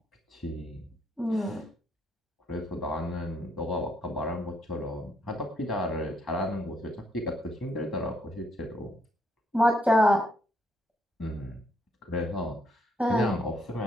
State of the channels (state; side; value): normal; both; correlation 0.73